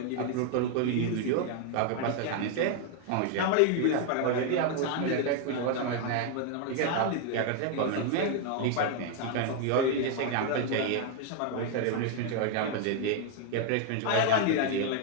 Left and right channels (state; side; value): different; both; correlation 0.00